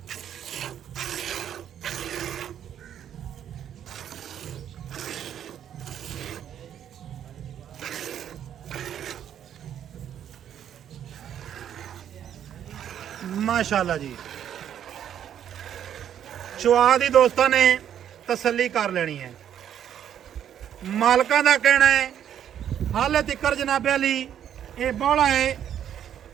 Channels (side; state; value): left; quieter; 9.8 dB